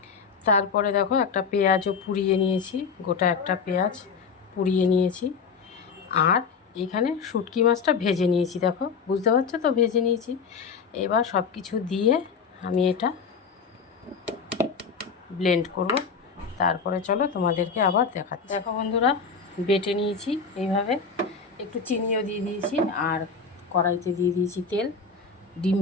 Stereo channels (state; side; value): quieter; right; 5.5 dB